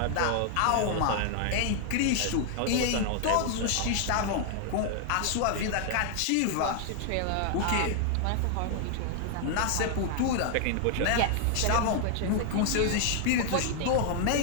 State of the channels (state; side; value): different; both; correlation 0.00